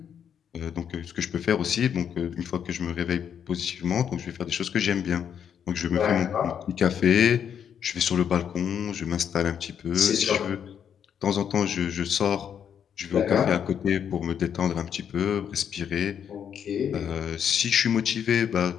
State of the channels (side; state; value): right; quieter; 8.3 dB